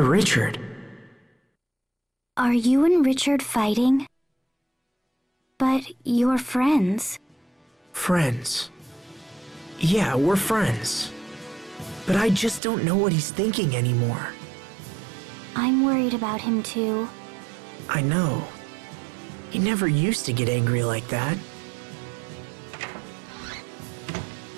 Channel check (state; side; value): drops out; left; at 12.6 s